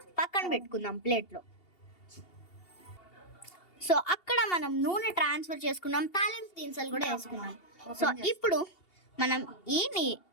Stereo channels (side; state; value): right; late; 2.8 ms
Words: పక్కన పెట్టుకుందాం ప్లేట్లో. సో అక్కడ మనం నూనె ట్రాన్స్ఫర్ చేసుకున్నాం, తాలింపు దినుసులు కూడా వేసుకున్నాం. సో ఇప్పుడు మనం